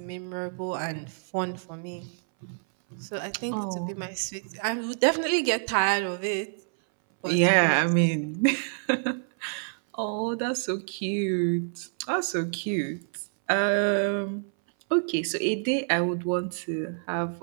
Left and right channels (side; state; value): left; silent; 60 dB below the other